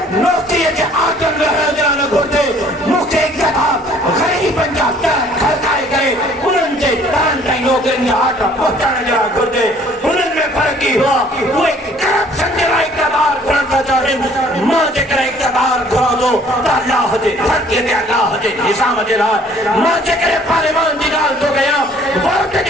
नौकरीअ जे आदम रहण जे लाइ न घुर्जे। मूंखे इक़्तिदार ग़रीबनि जा दर खड़काए करे उन्हनि जे दरनि ताईं नौकरियुनि जा आटा पहुचाइण जे लाइ घुर्जे। उन्हनि में फ़र्क़ु इहो आहे, उहे करप्शन जे लाइ इक़्तिदार घुरण था चाहिनि। मां जेकर इक़्तिदार घुरां थो त अल्लाह जे धरतीअ ते अल्लाह जे निज़ाम जे लाइ, मां जेकर पार्लियामान जी ॻाल्हि थो कयां, वोट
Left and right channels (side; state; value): both; normal; correlation 0.57